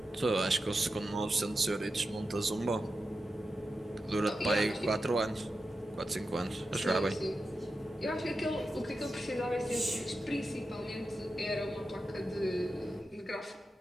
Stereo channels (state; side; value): normal; both; correlation 0.90